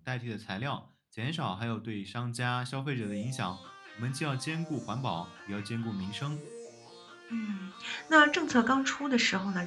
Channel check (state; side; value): identical; both; correlation 1.00